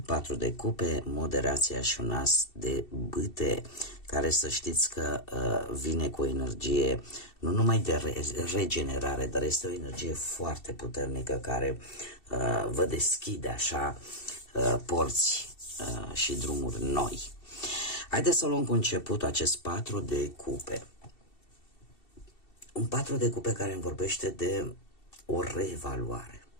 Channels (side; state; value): right; late; 2.7 ms